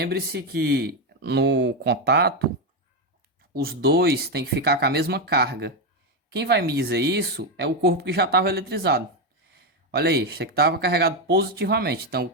que no contato, os dois têm que ficar com a mesma carga. Quem vai me dizer isso é o corpo que já estava eletrizado. Olha aí, isso aqui estava carregado positivamente, então o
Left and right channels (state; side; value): normal; both; correlation 0.07